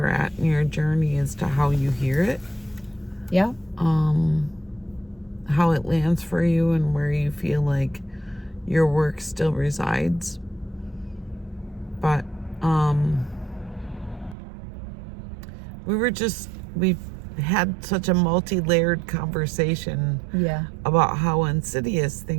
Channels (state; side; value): drops out; left; at 14.4 s